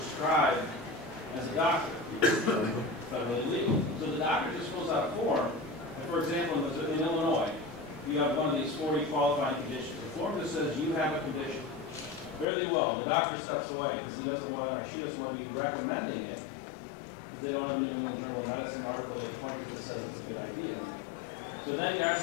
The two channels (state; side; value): drops out; right; at 12.5 s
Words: as a doctor. It's federally legal. So the doctor just fills out a form, and for example, in Illinois, you have one of these 40 qualifying conditions. The form just says you have a condition. Fairly well, the doctor steps away because he doesn't want to, or she doesn't want to be recommending it. Because they don't have a New England Journal of Medicine article they point to that says it's a good idea. So then there